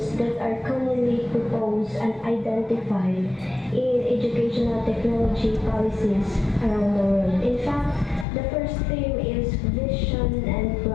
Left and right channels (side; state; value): right; drops out; at 8.2 s